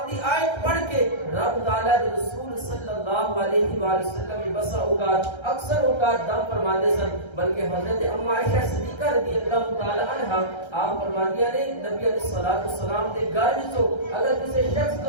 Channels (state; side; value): late; right; 1.3 ms